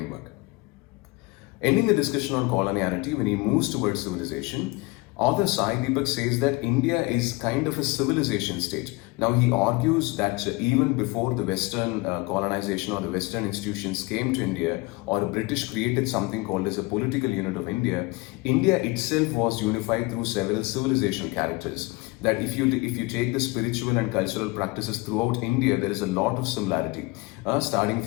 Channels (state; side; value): quieter; right; 23.3 dB